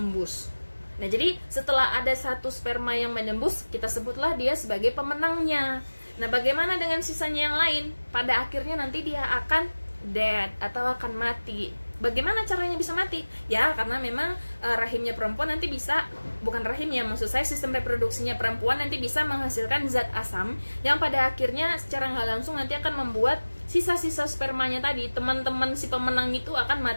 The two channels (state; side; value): inverted; both; correlation -1.00